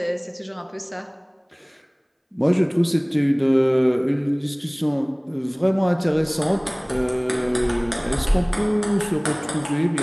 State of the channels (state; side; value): identical; both; correlation 1.00